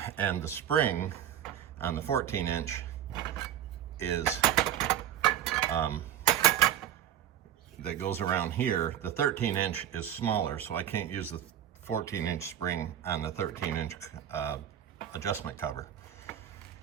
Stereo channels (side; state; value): left; quieter; 10.8 dB